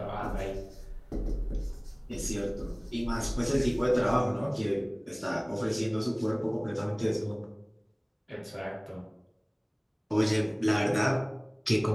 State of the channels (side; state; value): both; identical; correlation 1.00